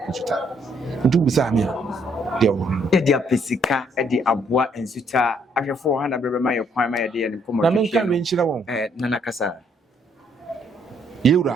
Nsuta nti wobisa me a deɛ wɔ no yɛde apɛ sika de aboa Nsuta ahwɛfo wɔ ha na bɛbɛma yɛ kwan ma yɛde yɛ ne nkɔmmɔ na menka me nkyerɛ wɔn nana kasa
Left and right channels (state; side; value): normal; both; correlation 0.69